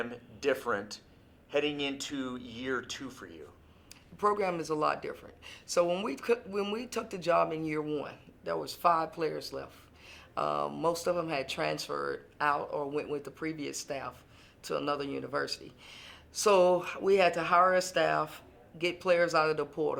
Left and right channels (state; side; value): identical; both; correlation 1.00